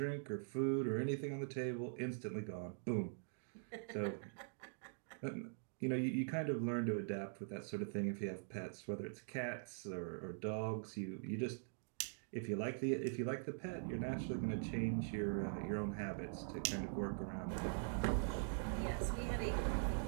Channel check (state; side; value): silent; left; digital silence